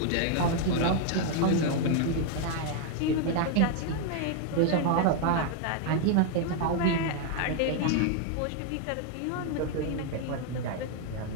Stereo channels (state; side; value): different; both; correlation 0.00